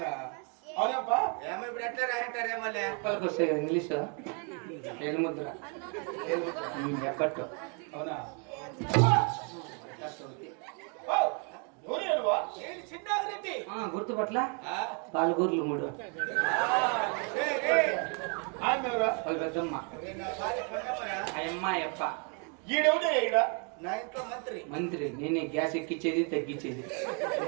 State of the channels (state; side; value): quieter; left; 37.4 dB